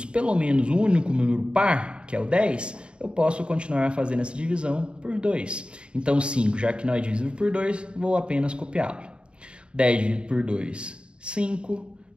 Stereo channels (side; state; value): left; late; 0.054 ms